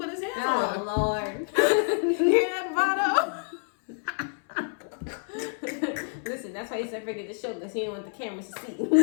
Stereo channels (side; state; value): right; silent; 59 dB below the other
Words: his hands on. Oh, Lord. Hear that, Vado? Listen, that's why he said forget the show, because he didn't want the cameras to see.